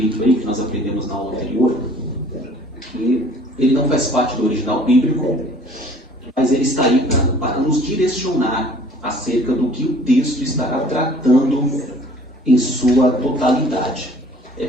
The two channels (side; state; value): both; normal; correlation 0.52